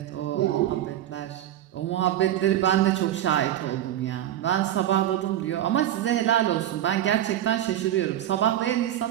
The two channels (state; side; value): quieter; left; 12.1 dB